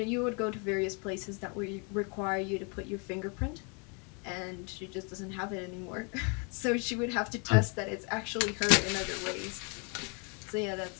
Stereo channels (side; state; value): right; quieter; 35.4 dB